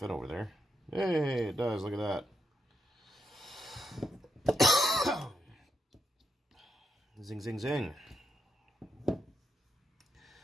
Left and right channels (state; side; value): normal; both; correlation 0.82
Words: over there. Hey, it does. Look at that. Zing, zing, zing.